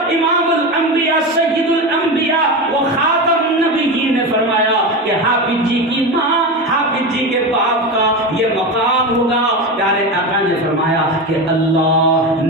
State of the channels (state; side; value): normal; both; correlation 0.20